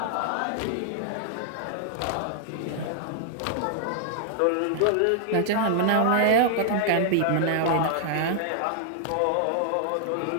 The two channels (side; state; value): both; different; correlation -0.01